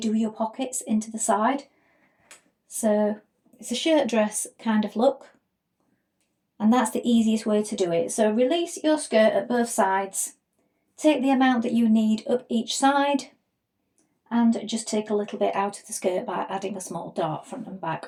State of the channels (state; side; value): identical; both; correlation 1.00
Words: your pockets into the side. So it's a shirt dress kind of look, and that's the easiest way to do it. So release your skirt at both sides, take the amount that you need up each side, and just take a little bit out of the skirt by adding a small dart front and